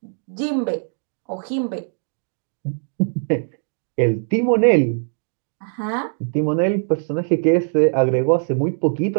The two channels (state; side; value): silent; left; 65 dB below the other